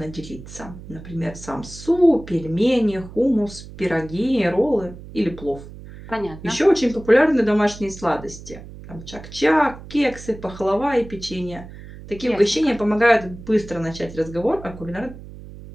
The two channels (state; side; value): noise; right; hum, 15 dB below the sound